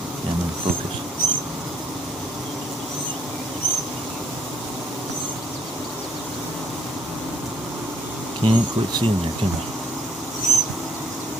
Yeah, I'm in focus. Can't quite see in there, can I?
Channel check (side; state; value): both; normal; correlation 0.64